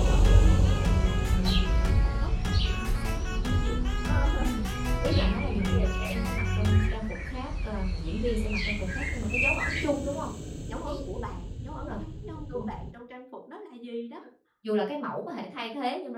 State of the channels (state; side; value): identical; both; correlation 1.00